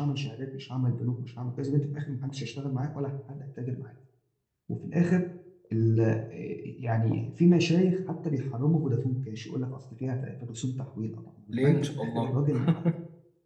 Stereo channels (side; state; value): both; identical; correlation 1.00